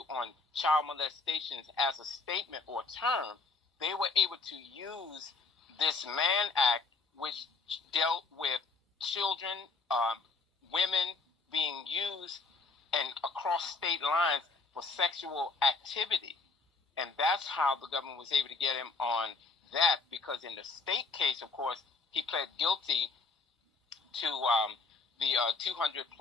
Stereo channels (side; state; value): right; quieter; 4.2 dB